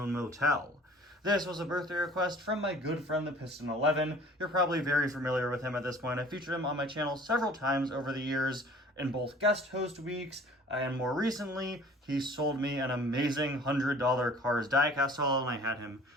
Motel. This was a birthday request from my good friend the Piston 11. You're probably very familiar with him at this point. I featured him on my channel several times over the years in both guest host weeks, and more recently, he sold me an amazing $100 Cars diecast haul, and I had him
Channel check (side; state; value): both; normal; correlation 0.49